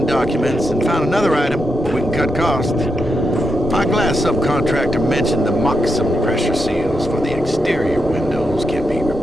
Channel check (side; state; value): both; normal; correlation 0.84